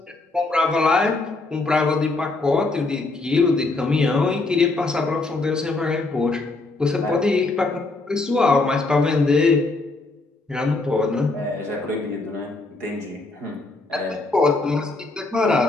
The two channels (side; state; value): right; quieter; 3.3 dB